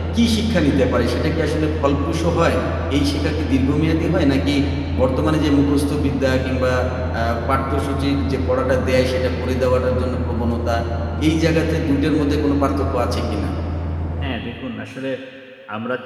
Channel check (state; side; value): identical; both; correlation 1.00